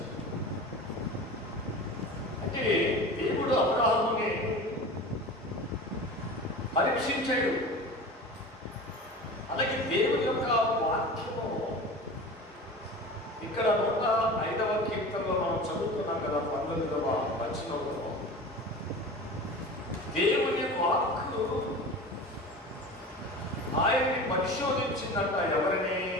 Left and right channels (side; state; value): both; normal; correlation 0.34